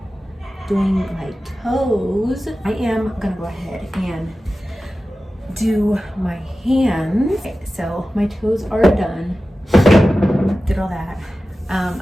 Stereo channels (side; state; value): both; normal; correlation 0.95